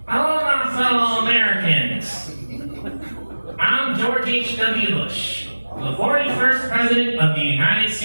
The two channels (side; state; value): both; inverted; correlation -1.00